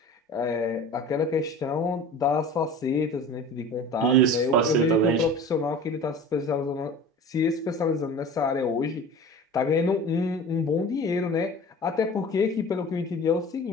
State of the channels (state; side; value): normal; both; correlation 0.38